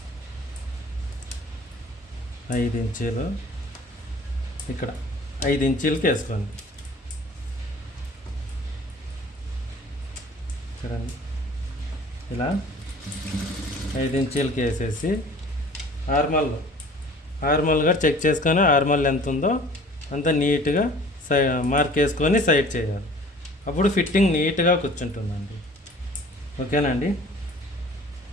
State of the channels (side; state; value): both; normal; correlation 0.48